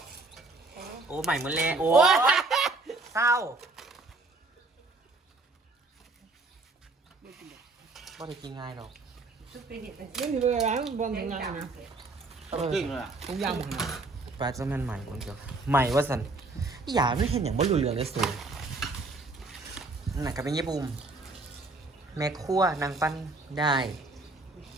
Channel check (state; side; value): quieter; left; 3.3 dB